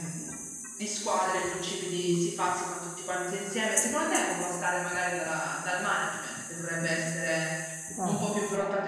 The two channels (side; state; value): both; identical; correlation 1.00